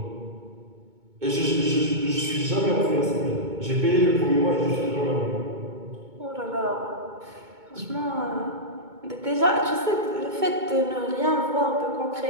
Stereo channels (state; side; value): late; left; 2.2 ms